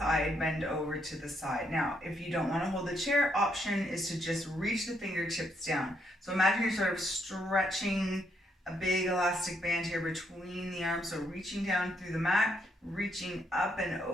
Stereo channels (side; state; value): both; normal; correlation 0.75